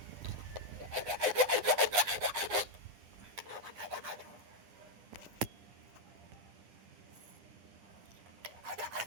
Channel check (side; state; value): left; late; 9.9 ms